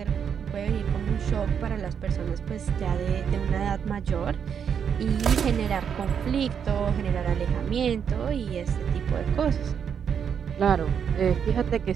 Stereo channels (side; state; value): left; quieter; 7.5 dB